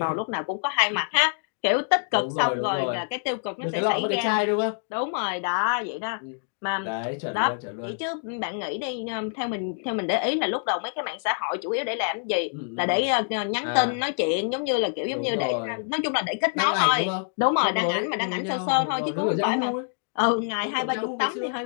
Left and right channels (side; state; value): right; silent; digital silence